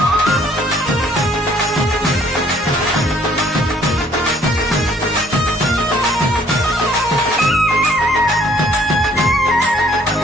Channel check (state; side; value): normal; both; correlation 0.61